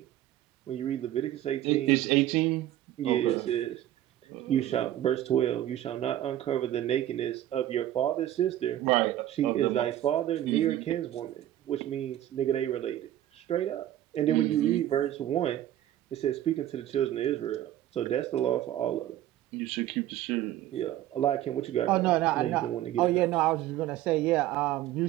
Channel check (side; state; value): left; quieter; 13.0 dB